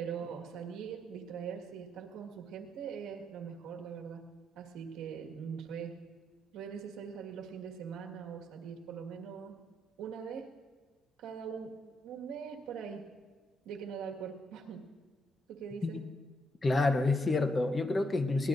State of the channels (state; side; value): normal; both; correlation 0.79